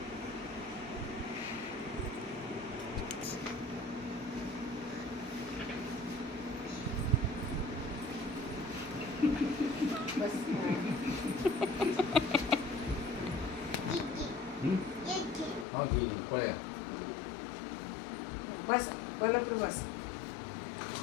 बस हाँ जी पड़ेगा बस बोलो फिर बस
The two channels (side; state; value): right; drops out; at 15.7 s